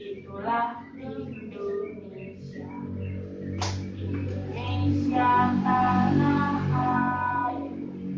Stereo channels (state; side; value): identical; both; correlation 1.00